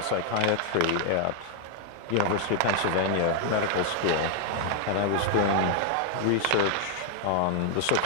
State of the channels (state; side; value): different; both; correlation 0.00